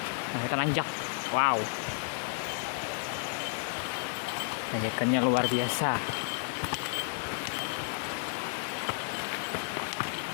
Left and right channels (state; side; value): silent; right; digital silence